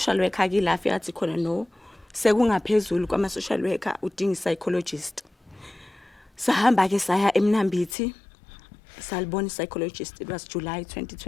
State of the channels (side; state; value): right; drops out; at 8.0 s